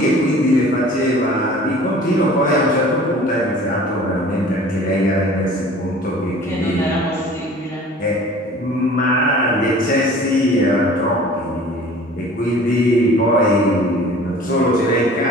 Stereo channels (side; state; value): both; normal; correlation 0.46